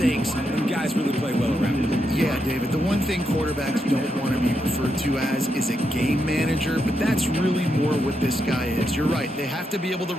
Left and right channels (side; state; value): both; normal; correlation 0.83